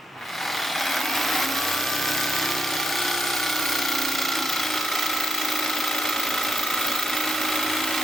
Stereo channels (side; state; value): both; normal; correlation 0.82